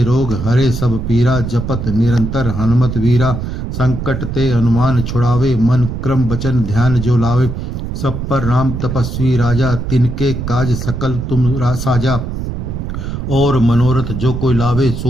रोग हरे सब पीरा, जपत निरंतर हनुमत वीरा। संकट ते हनुमान छुड़ावे, मन क्रम वचन ध्यान जो लावे। सब पर राम तपस्वी राजा, तिनके काज सकल तुम साजा। और मनोरथ जो कोई लावे,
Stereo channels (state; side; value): noise; right; rumble, 5 dB below the sound